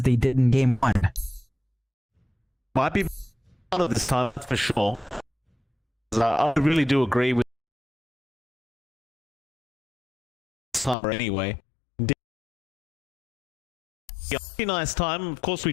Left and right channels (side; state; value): right; drops out; at 11.0 s